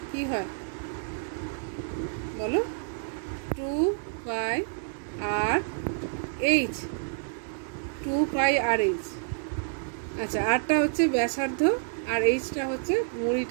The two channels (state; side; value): silent; left; digital silence